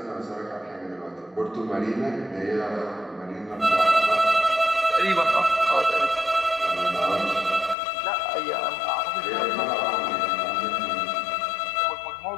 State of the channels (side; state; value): right; drops out; at 7.8 s